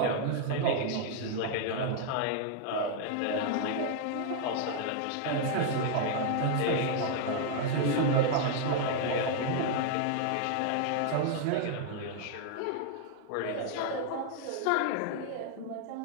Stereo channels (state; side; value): different; both; correlation 0.00